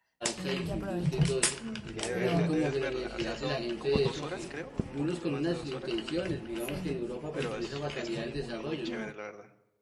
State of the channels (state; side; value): identical; both; correlation 1.00